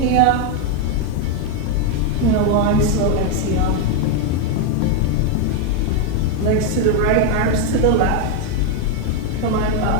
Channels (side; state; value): both; different; correlation 0.01